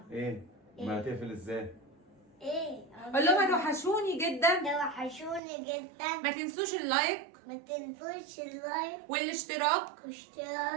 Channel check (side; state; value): left; drops out; at 5.4 s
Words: ايه؟ ما هتقفل ازاي؟ ايه؟ قول لهم هتوحشوني جدا، توحشوني جدا. ما تنسوش اللايك، ما تنسوش اللايك والاشتراك